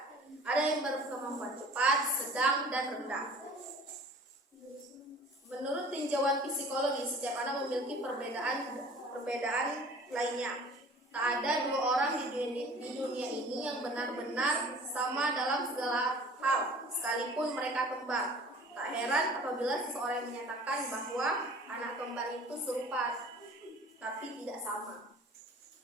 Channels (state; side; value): normal; both; correlation 0.47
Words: Ada yang berkemampuan cepat, sedang, dan rendah. Menurut tinjauan psikologi, setiap anak memiliki perbedaan lainnya. Tak ada dua orang di dunia ini yang benar-benar sama dalam segala hal, sekalipun mereka kembar. Tak heran apabila seseorang menyatakan bahwa anak kembar itu serupa, tapi tidak sama.